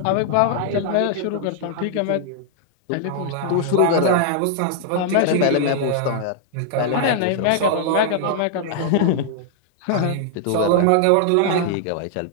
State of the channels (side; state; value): both; different; correlation -0.01